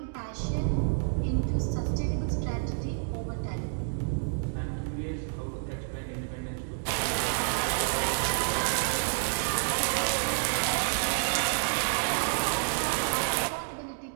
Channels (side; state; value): left; silent; digital silence